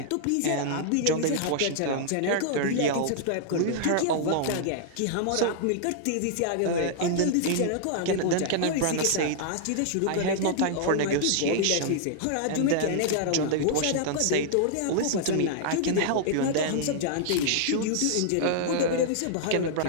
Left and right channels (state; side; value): different; both; correlation -0.01